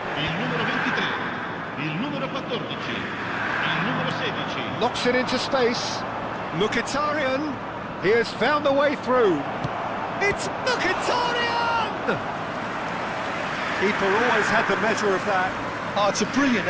il numero 23, il numero 14, il numero 16. Knocks it into space. Mkhitaryan, he has found the way through. It's Mkhitaryan! Keeper always had the measure of that. Oh, it's a brilliant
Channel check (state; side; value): identical; both; correlation 1.00